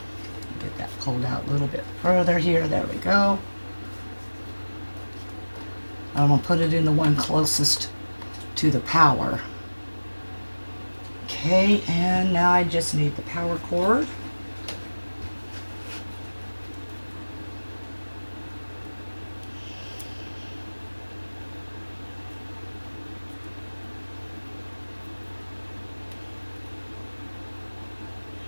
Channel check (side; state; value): both; inverted; correlation -1.00